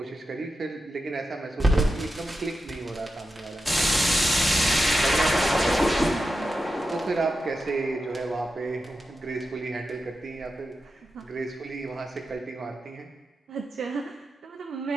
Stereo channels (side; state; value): both; normal; correlation 0.90